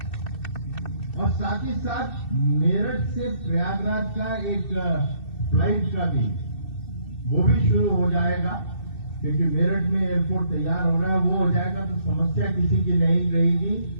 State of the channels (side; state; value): right; late; 2.6 ms